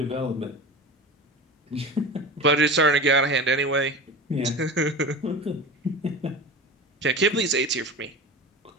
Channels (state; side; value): normal; both; correlation 0.30